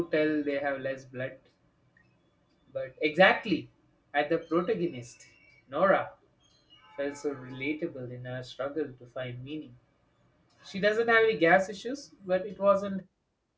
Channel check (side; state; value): both; identical; correlation 1.00